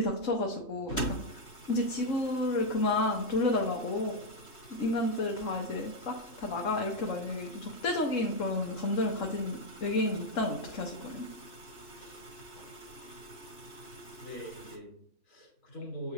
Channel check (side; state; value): right; late; 3.1 ms